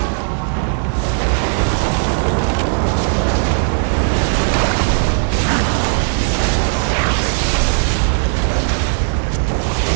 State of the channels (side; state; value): left; silent; 68 dB below the other